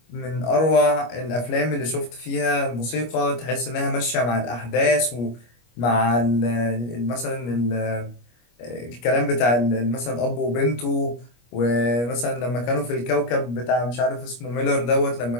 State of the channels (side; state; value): right; late; 25 ms